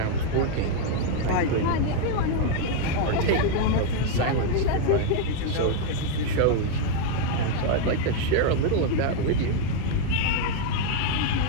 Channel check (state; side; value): different; both; correlation 0.00